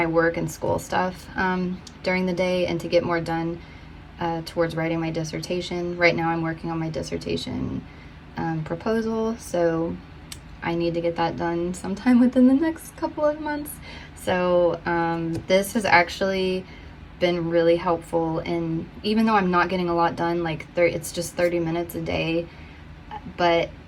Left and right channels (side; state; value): both; identical; correlation 1.00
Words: work and school stuff during the day and to get more done towards writing my dissertation. Right now I'm working on my dissertation proposal, so I need to get that done sometime within the next couple of months. So this has actually been really helpful, and even though I'm not getting a lot done, like it's just 30 minutes a day, but